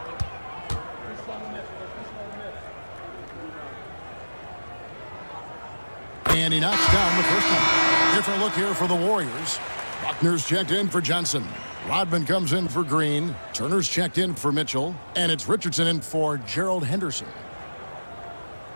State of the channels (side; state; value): both; inverted; correlation -1.00